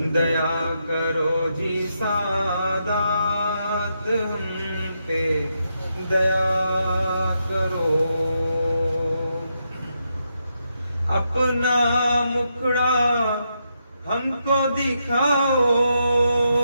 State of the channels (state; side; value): inverted; both; correlation -0.82